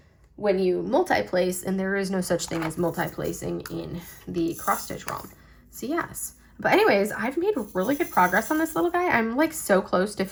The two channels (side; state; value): both; identical; correlation 1.00